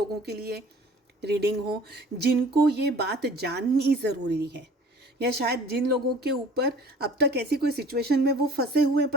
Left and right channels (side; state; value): both; normal; correlation 0.48